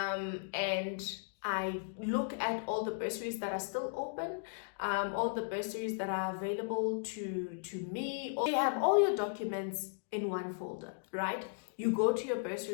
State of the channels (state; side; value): silent; right; digital silence